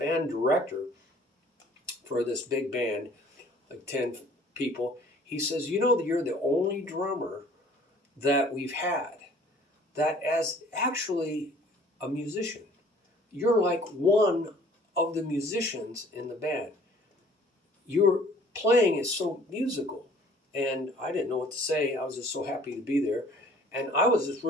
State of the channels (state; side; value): normal; both; correlation 0.54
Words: director for this big band, like 10 people. He says, you're the only drummer that we've had that is actually a musician. You're like one of the musicians in the band. your playing is so musical. And I didn't know what to say. I was just so happy to be there. And I was just